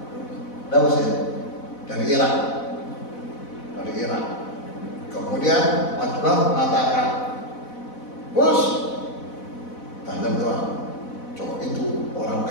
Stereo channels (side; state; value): right; late; 4.0 ms